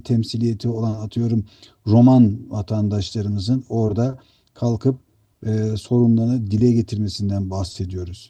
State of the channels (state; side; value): identical; both; correlation 1.00